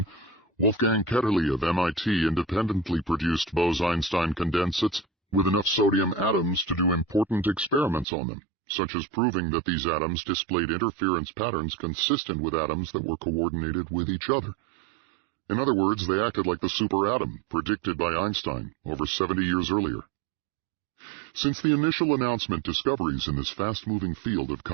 Wolfgang Ketterle of MIT independently produced Bose-Einstein condensates with enough sodium atoms to do important experiments on them, such as proving that these atoms displayed interference patterns consistent with atoms that were coordinated with each other. In other words, they acted like the superatom predicted by Einstein over 70 years earlier. Since the initial announcement, discoveries in this fast-moving field have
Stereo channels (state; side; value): drops out; left; at 8.1 s